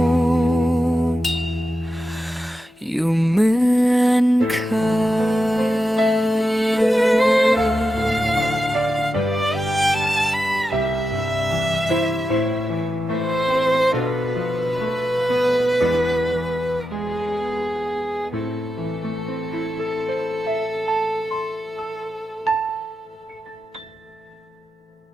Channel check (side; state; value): both; normal; correlation 0.89